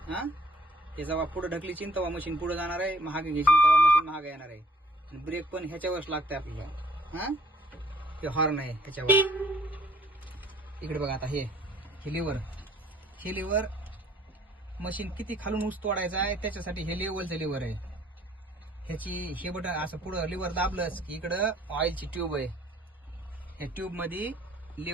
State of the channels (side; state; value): both; normal; correlation 0.61